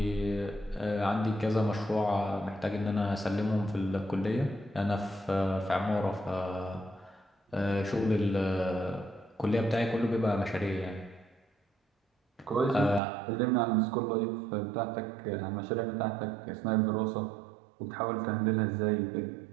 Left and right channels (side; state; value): left; drops out; at 13.0 s